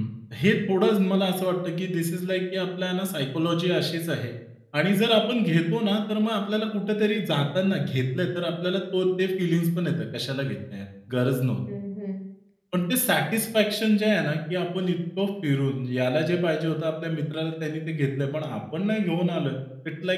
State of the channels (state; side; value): identical; both; correlation 1.00